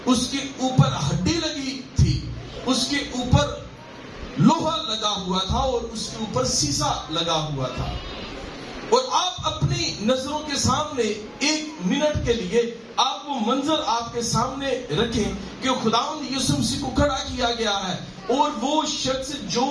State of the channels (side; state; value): both; identical; correlation 1.00